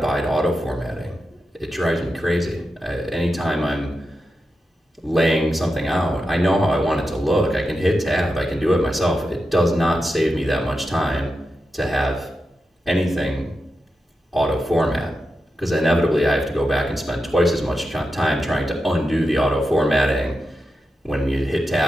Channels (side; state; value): both; normal; correlation 0.89